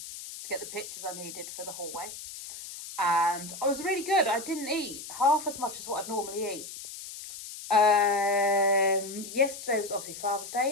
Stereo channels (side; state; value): left; noise; hiss, 11 dB below the sound